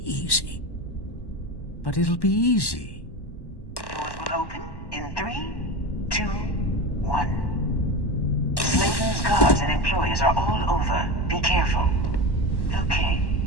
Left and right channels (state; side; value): late; right; 1.1 ms